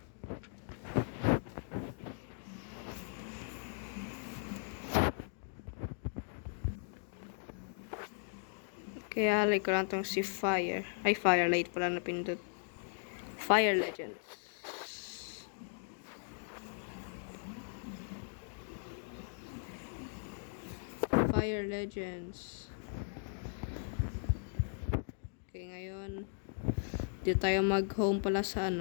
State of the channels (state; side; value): silent; right; digital silence